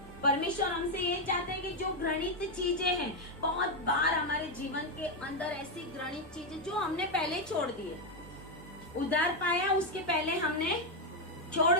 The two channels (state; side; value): normal; both; correlation 0.04